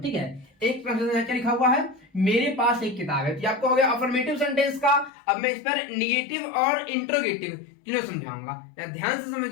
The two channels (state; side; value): drops out; right; at 5.1 s